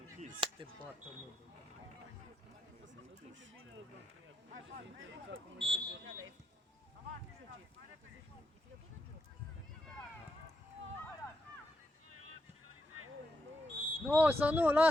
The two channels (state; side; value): normal; both; correlation 0.83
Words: închis. Te bată, mă. S-a închis. Nu, să nu,